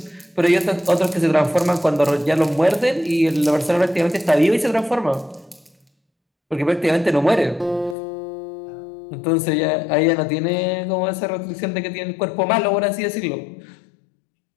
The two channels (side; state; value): right; drops out; at 8.0 s